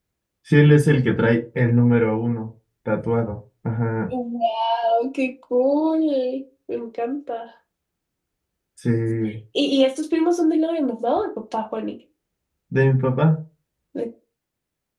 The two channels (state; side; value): identical; both; correlation 1.00